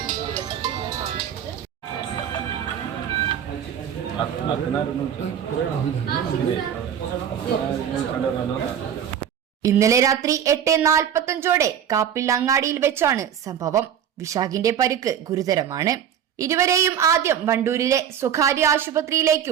ഇന്നലെ രാത്രി 8:45 കാപ്പിൽ അങ്ങാടിയിൽ വെച്ചാണ് സംഭവം. വിശാഖിന്റെ പരിക്ക് ഗുരുതരമാണ്. ഇരുവരെയും ആദ്യം വണ്ടൂരിലെ സ്വകാര്യ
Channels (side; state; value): left; quieter; 9.1 dB